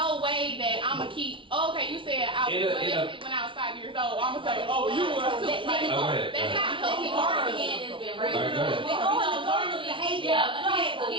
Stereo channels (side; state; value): left; late; 0.25 ms